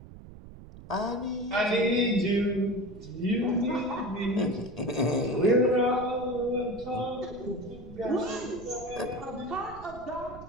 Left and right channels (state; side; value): noise; right; rumble, 16 dB below the sound